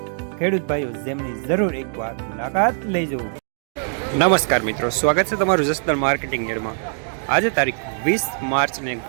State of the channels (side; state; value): left; silent; 64 dB below the other